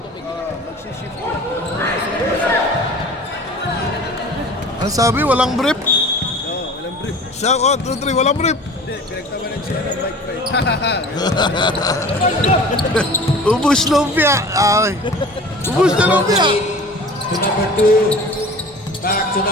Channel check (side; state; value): both; normal; correlation 0.41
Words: Ano sabi? Walang brief? Oo, walang brief. Siya, 1, 2, 3, walang brief. Hindi, pinagtawanan siya ng Mike Pay. Ubus lumpia. Ay. Ubus na lumpia. To number 2. Back to